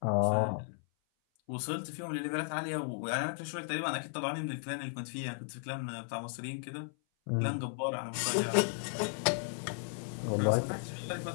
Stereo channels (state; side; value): silent; right; 55 dB below the other